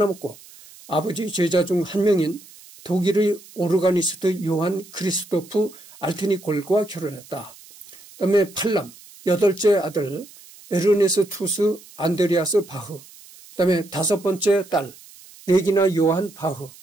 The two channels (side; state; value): right; noise; hiss, 22 dB below the sound